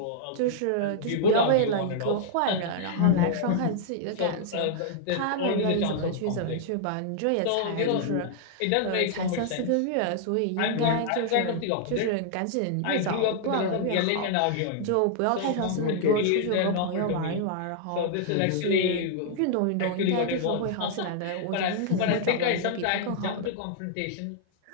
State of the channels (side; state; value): both; different; correlation -0.01